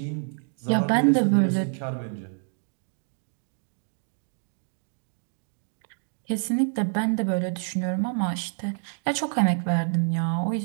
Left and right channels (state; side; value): silent; left; 60 dB below the other